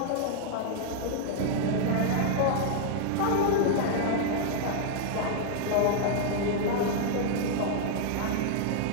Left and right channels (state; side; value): different; both; correlation -0.01